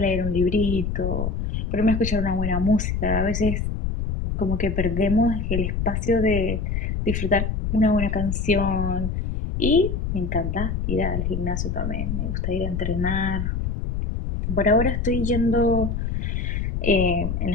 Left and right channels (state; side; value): noise; left; rumble, 2 dB below the sound